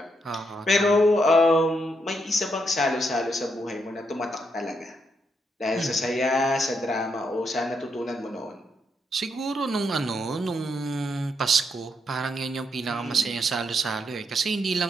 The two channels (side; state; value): both; normal; correlation 0.78